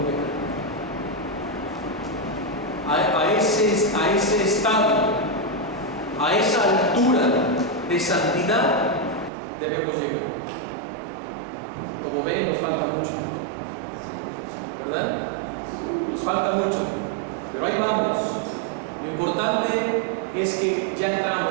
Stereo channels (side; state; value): left; drops out; at 9.3 s